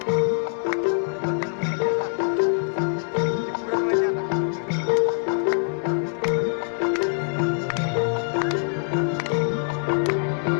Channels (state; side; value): silent; right; 63 dB below the other